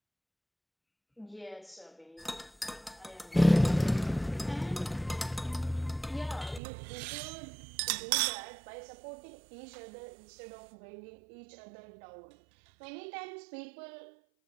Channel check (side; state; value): left; drops out; at 6.6 s